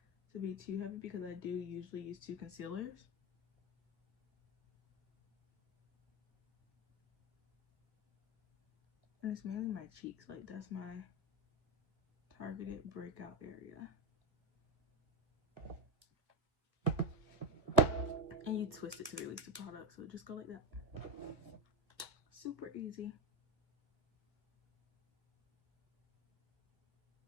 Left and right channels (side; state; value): left; late; 1.7 ms